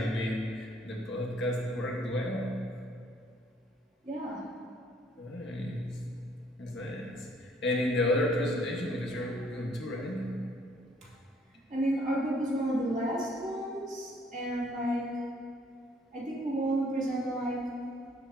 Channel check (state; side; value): normal; both; correlation 0.63